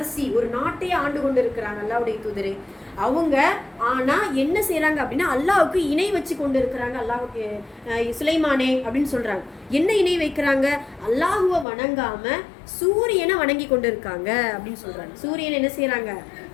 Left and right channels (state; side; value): drops out; right; at 11.7 s